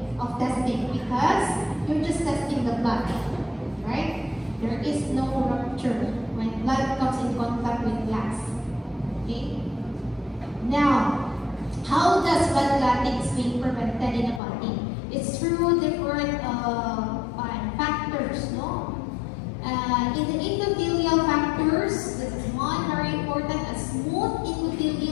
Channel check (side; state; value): right; drops out; at 14.4 s